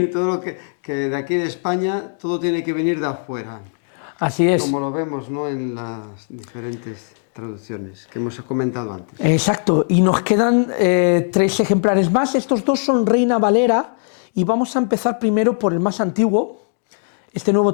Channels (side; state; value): right; silent; 60 dB below the other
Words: Todo lo que de aquí de España, todo tiene que venir de afuera. Así es. Como lo vemos, ¿no?, en las diferentes traducciones que hemos comentado antes. Exacto, y nos quedan 3 ejemplares más. Estos 2 son Reina Valera, y vamos a empezar primero por el más antiguo, este Nuevo